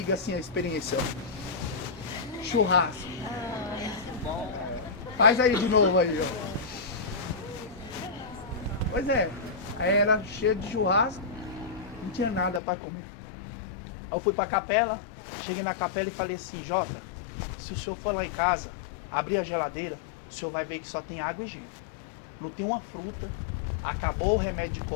assim a experiência. Churrasco. Faz aí de novo aí, ó. Pois é, aí era cheio de churrasco, não tinha nada para comer. Eu fui para a capela, cheguei na capela e falei assim: Jota, se o senhor for lá em casa, abrir a geladeira, o senhor vai ver que só tem água e gelo. Não tem uma fruta. Acabou o remédio de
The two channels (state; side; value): drops out; right; at 12.6 s